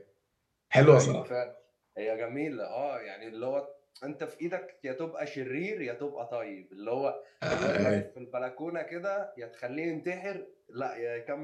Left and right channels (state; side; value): identical; both; correlation 1.00